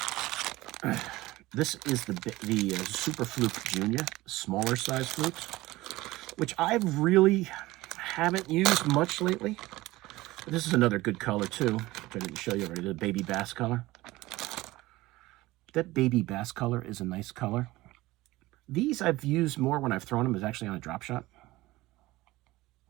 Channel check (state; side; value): quieter; left; 18.8 dB